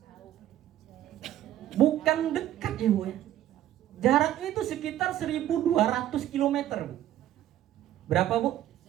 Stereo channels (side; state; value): left; quieter; 12.6 dB